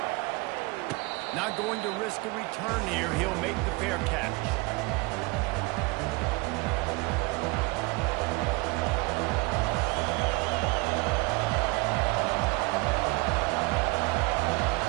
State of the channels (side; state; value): left; quieter; 25.4 dB